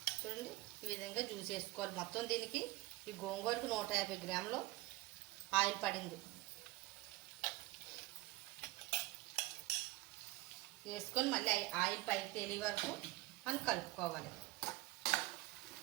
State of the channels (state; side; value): quieter; left; 19.7 dB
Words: చూడండి, ఈ విధంగా జ్యూస్ వేసుకోవాలి. మొత్తం దీనికి ఈ గోంగూరకు 150 గ్రాములు ఆయిల్ పడింది. వేసుకొని మళ్ళీ ఆయిల్ పైకి తేలి వరకు మనం కలుపుకోవాలి.